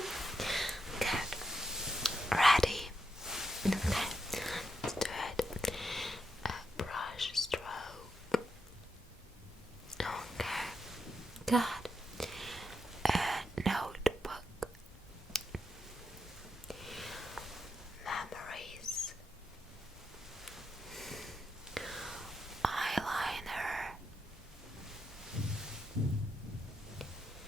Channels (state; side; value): normal; both; correlation 0.83